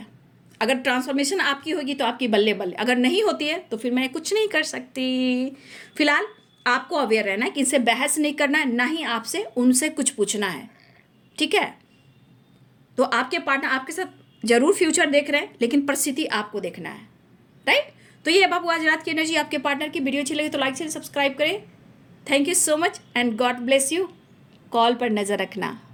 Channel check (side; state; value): both; identical; correlation 1.00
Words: अगर ट्रांसफॉर्मेशन आपकी होगी तो आपकी बल्ले बल्ले, अगर नहीं होती है तो फिर मैं कुछ नहीं कर सकती। फिलहाल आपको अवेयर रहना है कि इनसे बहस नहीं करना है, ना ही आपसे उनसे कुछ पूछना है, ठीक है। तो आपके पार्टनर आपके साथ जरूर फ्यूचर देख रहे हैं, लेकिन परिस्थिति आपको देखना है, राइट। तो ये है बाबू आज रात की एनर्जी आपके पार्टनर की। वीडियो अच्छी लगी तो लाइक शेयर सब्सक्राइब करें। Thank you so much and God bless you. Call पर नज़र रखना।